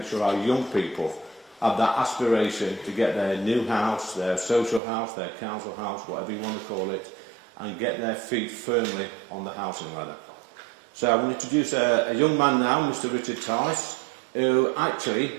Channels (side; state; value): left; drops out; at 4.8 s